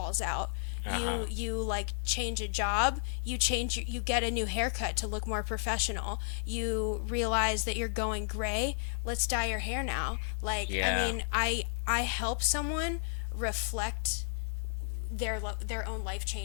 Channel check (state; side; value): silent; right; digital silence